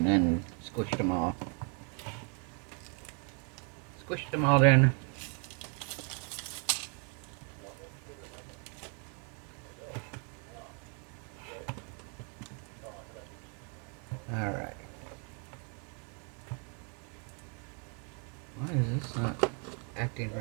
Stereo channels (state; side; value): quieter; left; 38.3 dB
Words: then squished them all. Squished them all in. Alright. Why is this not acting